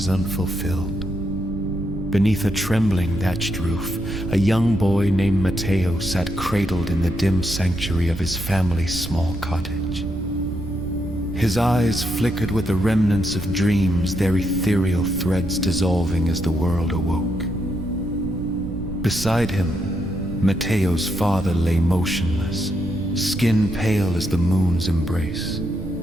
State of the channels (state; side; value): noise; right; rumble, 9 dB below the sound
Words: unfulfilled. Beneath a trembling thatched roof, a young boy named Matteo sat cradled in the dim sanctuary of his family's small cottage. His eyes flickered with the remnants of dreams, their ethereal threads dissolving as the world awoke. Beside him, Matteo's father lay motionless, skin pale as the moon's embrace.